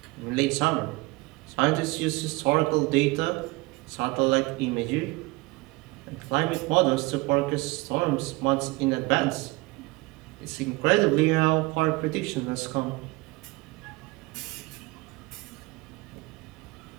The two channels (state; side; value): quieter; left; 23.4 dB